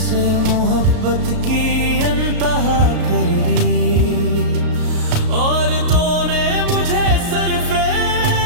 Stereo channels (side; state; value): left; late; 33 ms